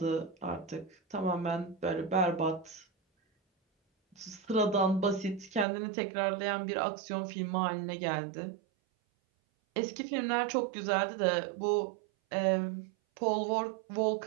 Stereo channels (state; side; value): drops out; left; at 5.7 s